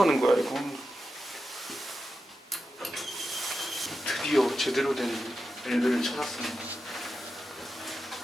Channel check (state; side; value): normal; both; correlation 0.90